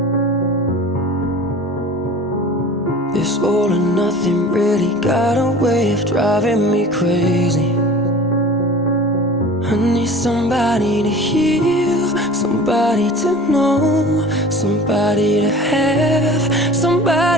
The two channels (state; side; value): normal; both; correlation 0.41